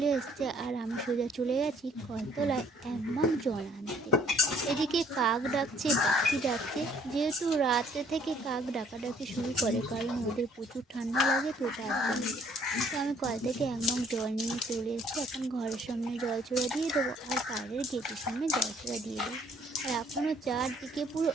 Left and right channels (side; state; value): both; normal; correlation 0.61